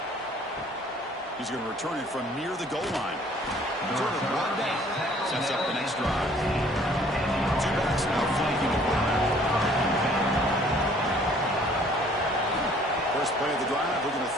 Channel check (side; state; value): both; normal; correlation 0.57